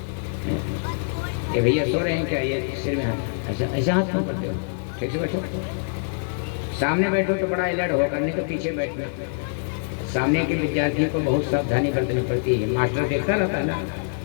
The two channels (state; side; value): silent; right; 60 dB below the other